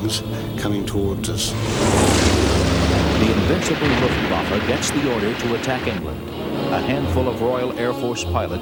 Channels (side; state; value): both; identical; correlation 1.00